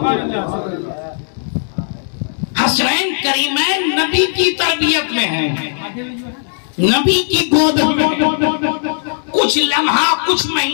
حسنین کریمین نبی کی تربیت میں ہیں، نبی کی گود میں، کچھ لمحہ، کچھ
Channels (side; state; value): right; silent; digital silence